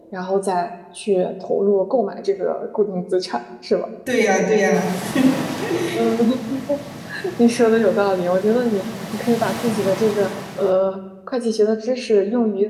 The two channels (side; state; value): both; identical; correlation 1.00